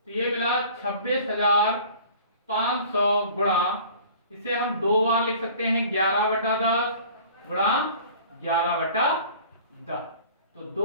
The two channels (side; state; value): both; inverted; correlation -0.46